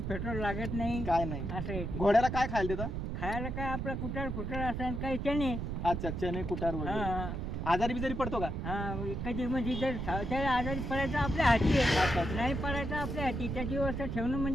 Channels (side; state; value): right; noise; rumble, 3 dB below the sound